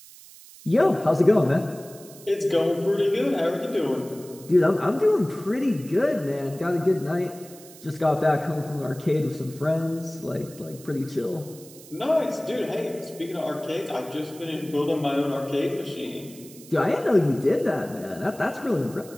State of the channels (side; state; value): right; noise; hiss, 20 dB below the sound